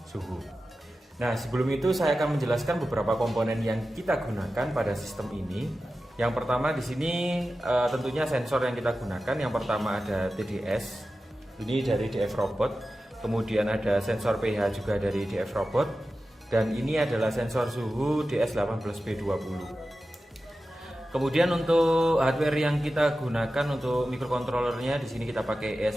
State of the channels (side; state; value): both; normal; correlation 0.93